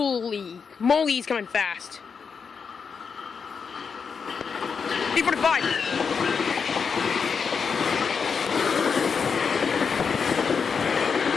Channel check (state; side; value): quieter; right; 5.9 dB